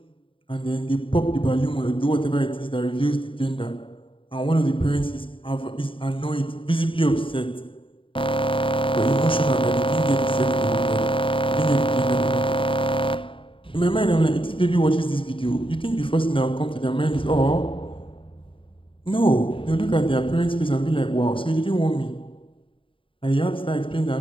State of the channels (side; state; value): right; late; 0.25 ms